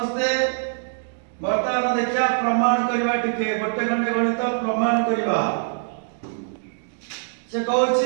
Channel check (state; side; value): silent; left; digital silence